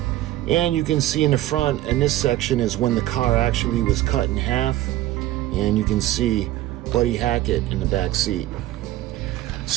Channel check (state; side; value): quieter; left; 15.0 dB